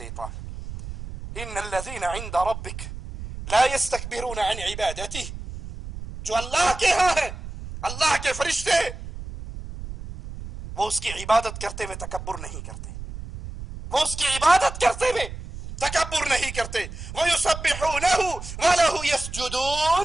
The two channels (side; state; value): right; noise; rumble, 10 dB below the sound